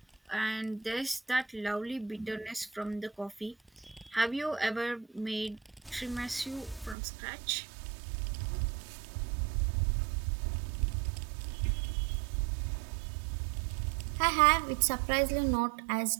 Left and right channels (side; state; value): left; drops out; at 7.0 s